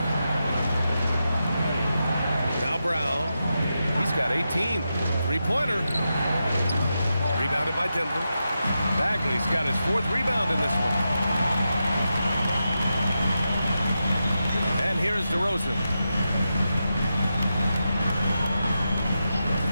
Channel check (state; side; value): inverted; both; correlation -0.88